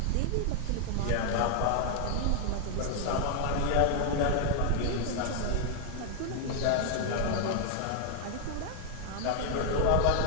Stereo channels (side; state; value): both; different; correlation 0.00